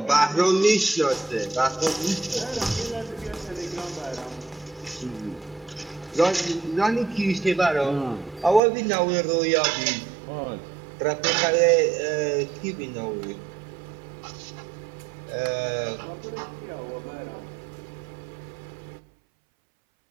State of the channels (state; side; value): drops out; left; at 8.6 s